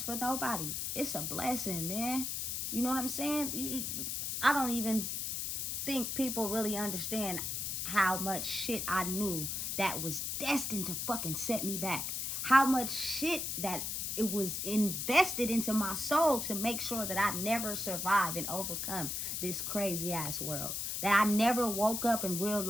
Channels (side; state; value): left; noise; hiss, 2 dB below the sound